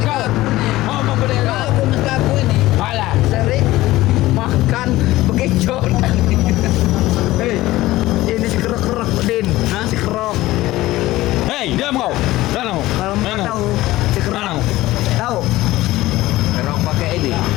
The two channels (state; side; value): quieter; right; 17.2 dB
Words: Ngomong gede kau. Kau kumis kaku ini Alah. sering makan bekecot. Hei, ini si kerok-kerok, Din. Si kerok. Hei, diam kau. Mana kau? Kalau mau Mana? tahu, si kerok. Mana? Tahu? Kerok pakai ini.